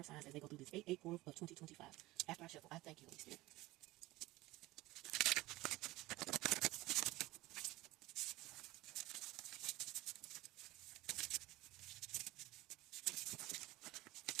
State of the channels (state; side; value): quieter; left; 19.0 dB